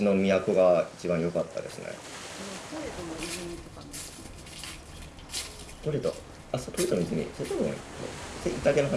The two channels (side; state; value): both; identical; correlation 1.00